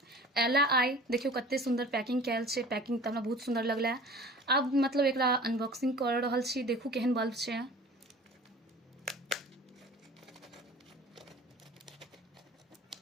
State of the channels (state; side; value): normal; both; correlation 0.43